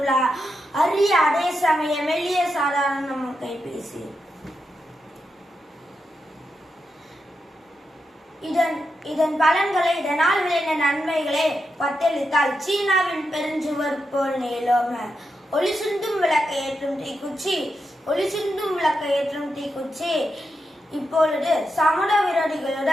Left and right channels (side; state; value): both; normal; correlation 0.86